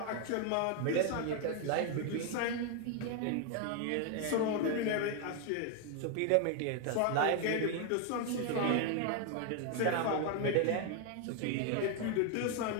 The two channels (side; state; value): both; different; correlation 0.01